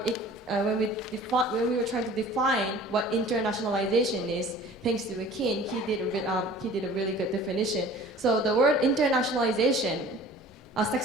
when we were trying to define what internationalization is, thanks to Akin, he did a really good definition. So the word internationalization,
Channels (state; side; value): normal; both; correlation 0.46